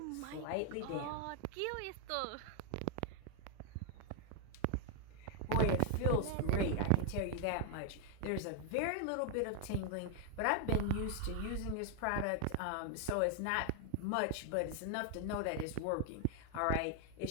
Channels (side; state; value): both; different; correlation 0.00